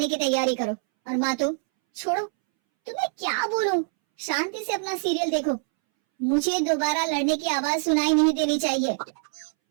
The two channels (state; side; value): silent; left; 62 dB below the other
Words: की तैयारी करो। और माँ तुम छोड़ो, तुम्हें क्या बोलूं, शांति से अपना सीरियल देखो, मुझे दोबारा लड़ने की आवाज सुनाई नहीं देनी चाहिए।